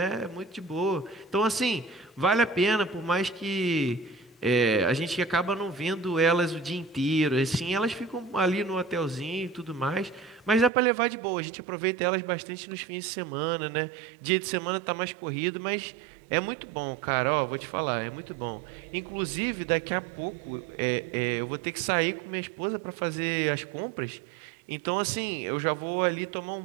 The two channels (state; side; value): drops out; left; at 10.7 s